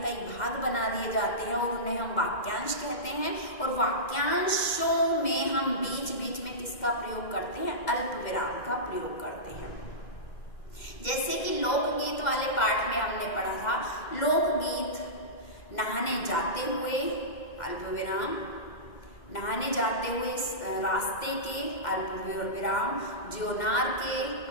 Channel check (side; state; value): right; late; 2.1 ms